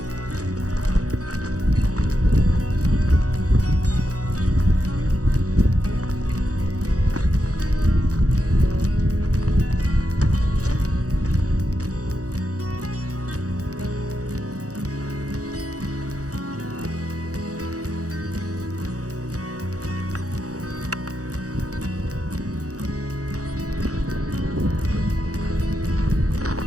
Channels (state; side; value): late; left; 0.66 ms